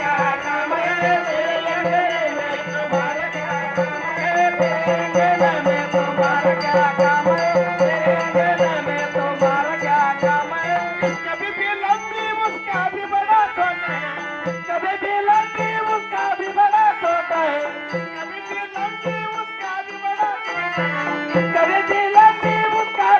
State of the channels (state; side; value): identical; both; correlation 1.00